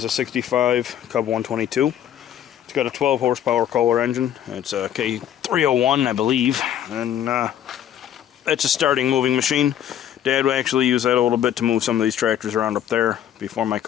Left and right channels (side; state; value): right; quieter; 10.5 dB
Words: a 65 Cub 122. It's got a 12 horsepower Kohler engine. It's a K301, I believe, and it's a starting moving machine. Dad would actually use that a little bit to move some of these tractors around up there before my